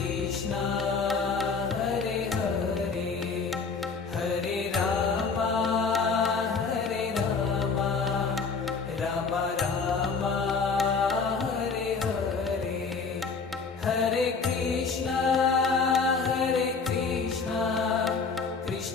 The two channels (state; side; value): quieter; right; 4.9 dB